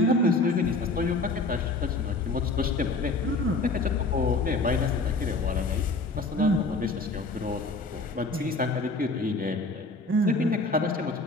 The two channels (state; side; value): quieter; right; 3.2 dB